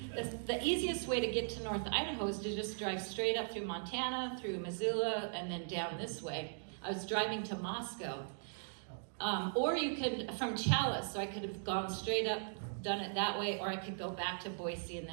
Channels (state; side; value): silent; left; digital silence